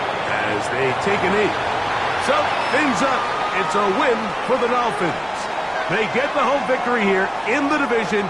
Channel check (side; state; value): both; identical; correlation 1.00